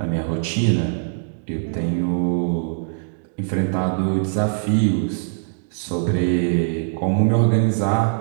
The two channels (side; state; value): left; silent; digital silence